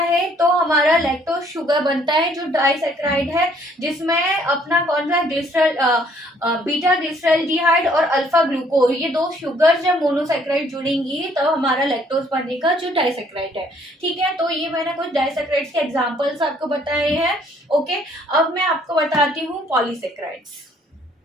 तो हमारा लैक्टोज शुगर बनता है, जो डाइसेक्राइड है, जिसमें अपना कौन सा ग्लिसरल बीटा ग्लिसरल्डिहाइड और अल्फा ग्लूकोज, ये दो शुगर जब मोनोसेक्राइड जुड़ेंगी तो हमारा लैक्टोज बनेगा, जो डाइसेक्राइड है। ठीक है, तो ये मैंने कुछ डाइसेक्राइड्स के एग्जांपल्स आपको बताए हैं। ओके, अब मैं आपको बताती हूँ पॉलीसेक्राइड्स।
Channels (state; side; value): normal; both; correlation 0.63